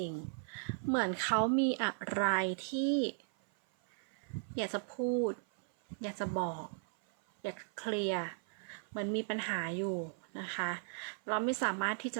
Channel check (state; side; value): silent; left; 53 dB below the other